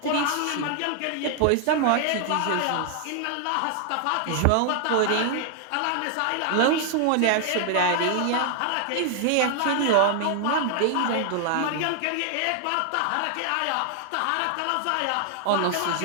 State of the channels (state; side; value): different; both; correlation 0.00